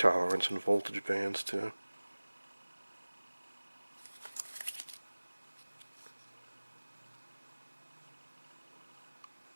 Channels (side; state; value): both; inverted; correlation -1.00